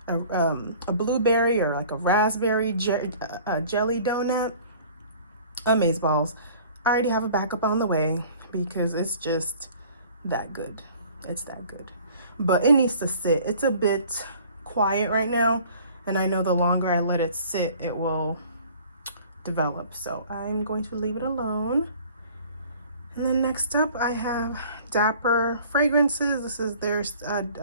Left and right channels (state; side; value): inverted; both; correlation -0.50